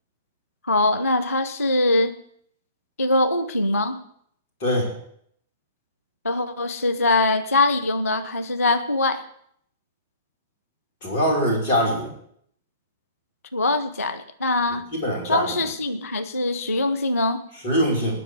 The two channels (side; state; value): both; inverted; correlation -0.56